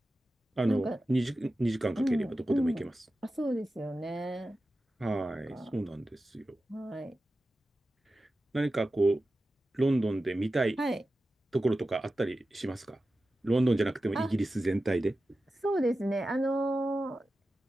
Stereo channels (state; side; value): normal; both; correlation 0.93